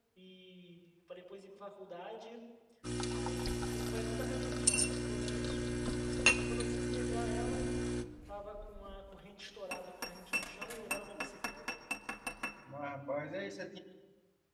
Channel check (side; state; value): both; identical; correlation 1.00